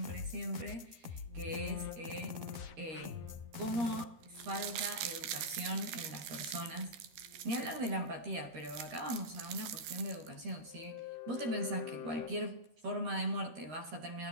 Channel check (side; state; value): left; late; 13 ms